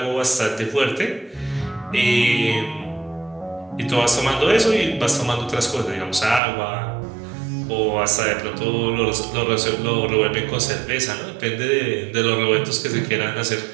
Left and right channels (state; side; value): drops out; left; at 6.4 s